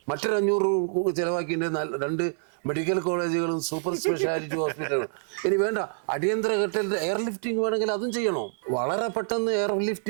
മറ്റൊരു 500 ചെലവാക്കിയിട്ട് 2 മെഡിക്കൽ കോളേജുകളും സൂപ്പർ സ്പെഷ്യാലിറ്റി ഹോസ്പിറ്റലുകളും. ഇനി വേണ്ട, അടിയന്തര ഘട്ടത്തിൽ എയർ ലിഫ്റ്റിംഗ് വേണമെങ്കിൽ അതും ചെയ്യണോ? വളരെ പെട്ടെന്ന് എയർ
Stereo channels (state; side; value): silent; left; digital silence